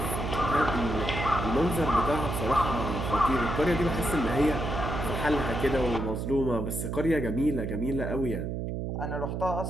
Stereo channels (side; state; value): right; noise; hum, 3 dB below the sound